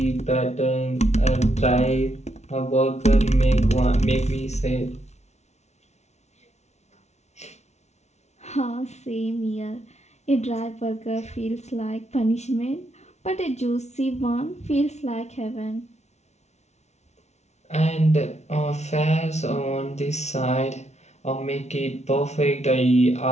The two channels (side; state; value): right; late; 0.32 ms